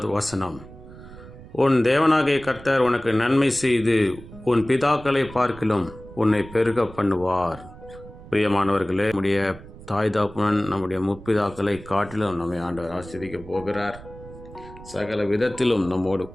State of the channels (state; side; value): noise; right; rumble, 17 dB below the sound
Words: வசனம். உன் தேவனாகிய கர்த்தர் உனக்கு நன்மை செய்து உன் பிதாக்களை பார்க்கிலும் உன்னை பெருக பண்ணுவார். பிரியமானவர்களே, நம்முடைய தாய் தாப்புனன் நம்முடைய முற்பிதாக்களை காட்டிலும் நம்மை ஆண்டவர் ஆசீர்வதிக்கப் போகிறார். சகல விதத்திலும் நம்மோடு